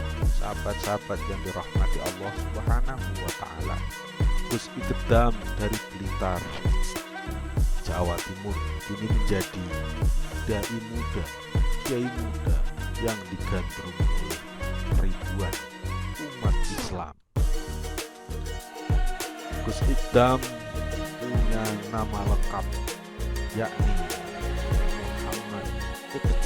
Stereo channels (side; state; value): both; identical; correlation 1.00